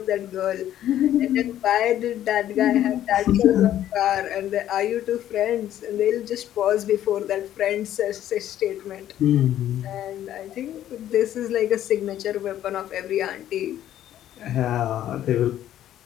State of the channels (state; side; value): quieter; right; 11.9 dB